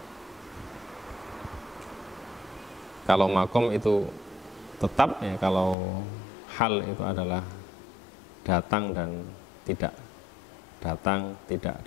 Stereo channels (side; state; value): right; drops out; at 5.8 s